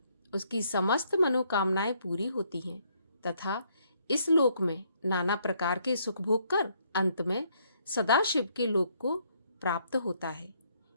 उसकी समस्त मनोकामनाएं पूरी होती हैं तथा इस लोक में नाना प्रकार के सुख भोग कर अंत में सदाशिव के लोक को प्राप्त होता है।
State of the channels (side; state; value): both; inverted; correlation -0.70